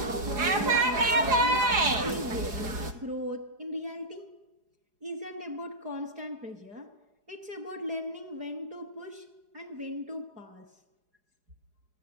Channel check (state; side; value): late; left; 4.8 ms